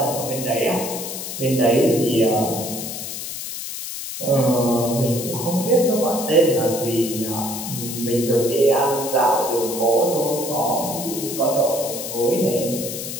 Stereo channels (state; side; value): noise; left; hiss, 7 dB below the sound